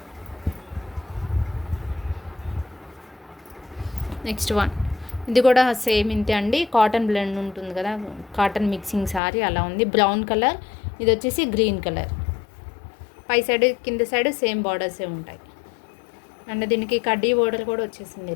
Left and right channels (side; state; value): right; drops out; at 9.2 s